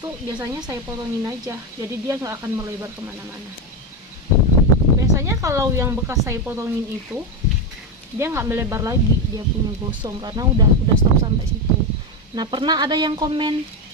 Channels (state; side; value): normal; both; correlation 0.11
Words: biasanya saya potongin aja. Jadi dia nggak akan melebar kemana-mana. Biasanya kalau yang bekas saya potongin itu, dia nggak melebar lagi, dia punya gosong karena udah stop sampai situ. Nah, pernah ada yang komen